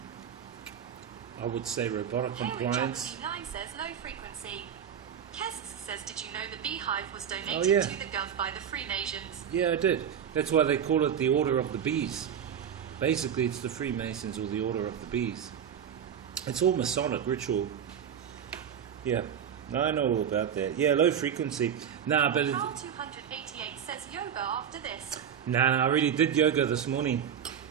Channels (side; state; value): left; quieter; 8.4 dB